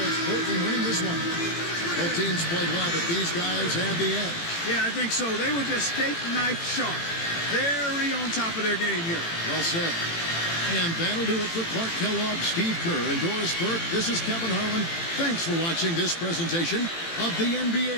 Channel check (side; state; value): right; late; 18 ms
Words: it's Portland winning this one. Both teams played well, but these guys had the edge. Yeah, I think so. They were just steak knife sharp. Very on top of their game here. Well said. And that'll do it for Clark Kellogg, Steve Kerr, and Doris Burke. This is Kevin Harlan. Thanks for watching this presentation of the